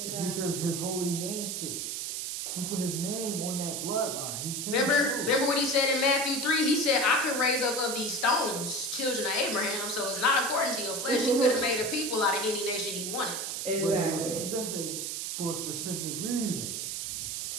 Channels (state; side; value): noise; right; hiss, 3 dB below the sound